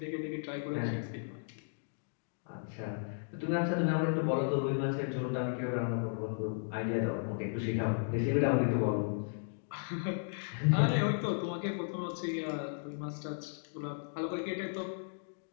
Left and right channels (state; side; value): silent; right; digital silence